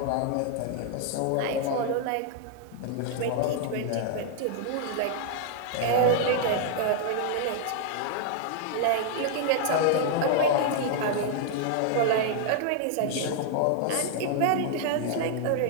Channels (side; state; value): both; different; correlation 0.00